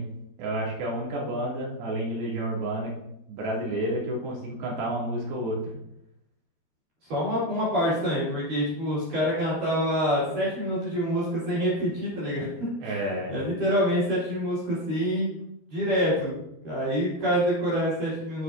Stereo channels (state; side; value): late; left; 12 ms